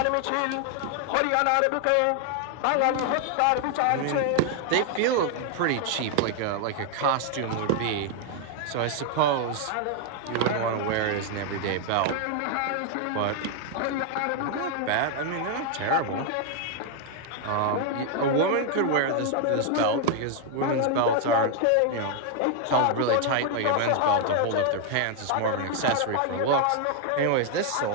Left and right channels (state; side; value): different; both; correlation 0.00